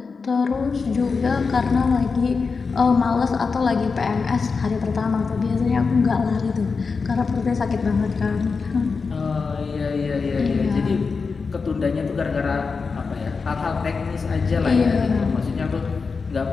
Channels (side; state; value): right; quieter; 4.8 dB